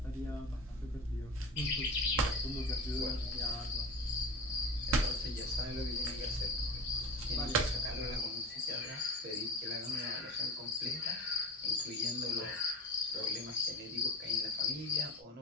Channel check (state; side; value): normal; both; correlation 0.32